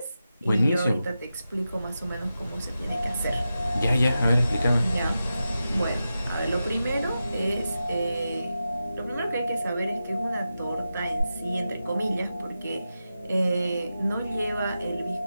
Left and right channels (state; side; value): inverted; both; correlation -0.91